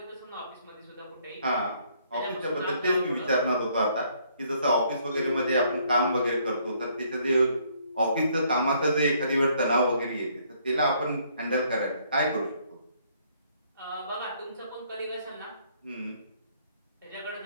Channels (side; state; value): both; inverted; correlation -0.66